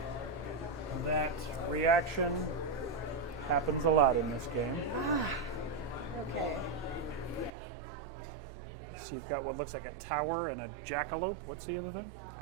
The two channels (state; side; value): drops out; left; at 7.5 s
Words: that. Reaction happens a lot in this game. Okay. So you've got what looks like a tower and a jackalope. What's the other thing?